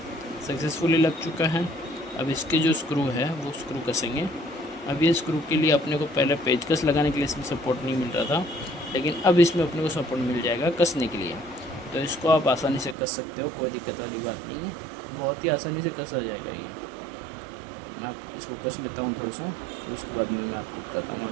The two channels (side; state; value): left; drops out; at 13.0 s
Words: सक्सेसफुली लग चुका है। अब इसके जो स्क्रू है वो स्क्रू कसेंगे। अब ये स्क्रू के लिए अपने को पहले पेचकस लगाने के लिए इसमें सपोर्ट नहीं मिल रहा था, लेकिन अब इसमें अपने को सपोर्ट मिल जाएगा कसने के लिए, तो इसको आप आसानी से कस सकते हो, कोई दिक्कत वाली बात नहीं है, बहुत ही आसानी से कसा जाएगा ये। मैं आप इसको कस लेता हूँ थोड़ा सा, फिर उसके बाद में मैं आपको बताता हूँ